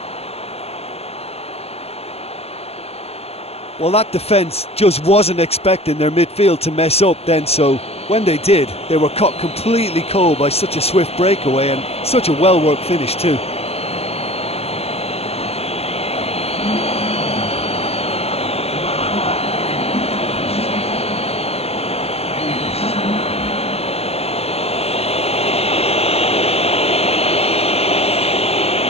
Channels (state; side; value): late; right; 0.29 ms